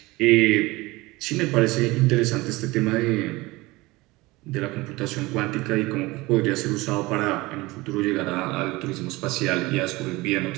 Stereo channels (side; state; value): left; quieter; 21.4 dB